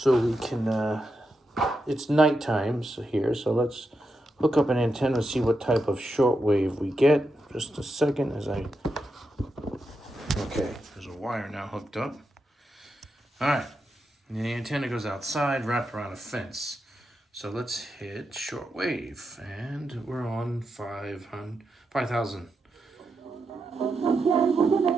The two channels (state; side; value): normal; both; correlation 0.86